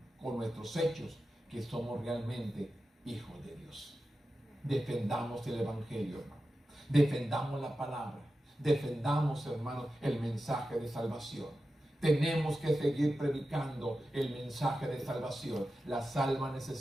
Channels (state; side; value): normal; both; correlation 0.92